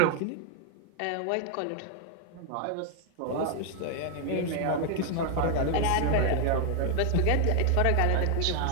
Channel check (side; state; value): both; different; correlation 0.00